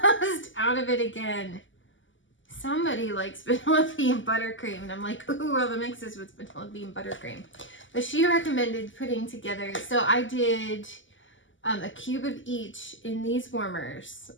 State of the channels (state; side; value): late; right; 0.55 ms